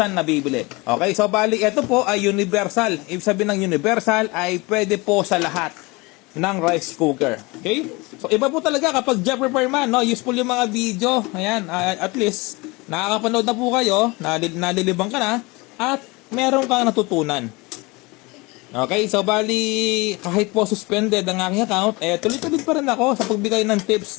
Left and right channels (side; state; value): right; quieter; 24.9 dB